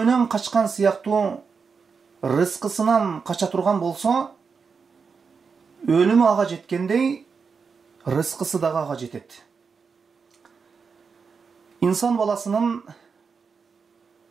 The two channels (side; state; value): left; quieter; 5.5 dB